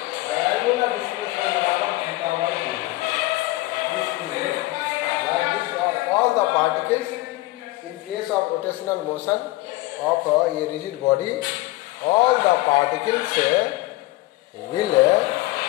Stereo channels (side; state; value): right; quieter; 19.5 dB